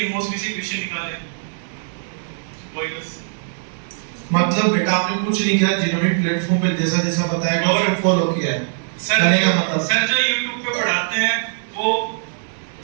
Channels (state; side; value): silent; left; digital silence